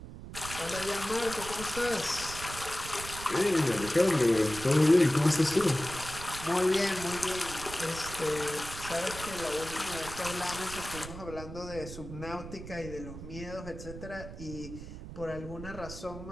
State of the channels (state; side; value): noise; right; rumble, 11 dB below the sound